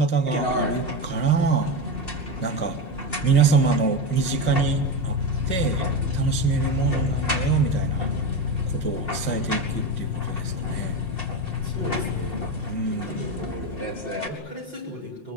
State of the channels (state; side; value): late; right; 5.6 ms